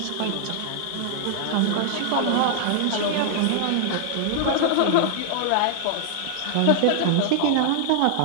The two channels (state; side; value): different; both; correlation -0.01